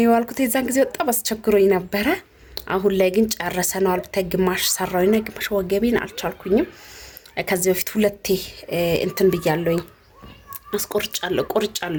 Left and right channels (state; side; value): identical; both; correlation 1.00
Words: የዋልኩት። የዛን ጊዜ በጣም አስቸግሮኝ ነበረ። አሁን ላይ ግን ጨርሰናል። ግማሽ ሰራውና ግማሽ ወገቤን አልቻልኩኝም። ከዚህ በፊት ሁለቴ እንትን ብያለሁኝ